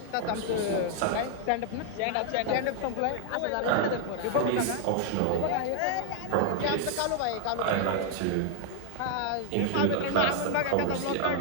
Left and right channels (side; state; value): both; different; correlation 0.00